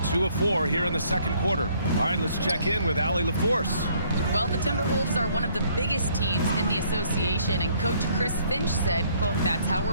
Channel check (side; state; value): both; inverted; correlation -0.63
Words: 2 of 4 here in the second quarter. All right, let's check in with Allie LaForce. Well, the Timberwolves are one of the biggest teams in the association, and Coach Chris Finch said, quote, "That's how